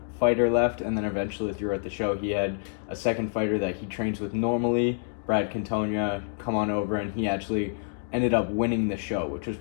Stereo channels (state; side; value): silent; right; digital silence